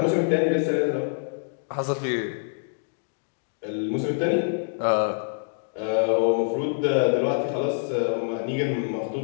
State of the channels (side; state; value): right; silent; digital silence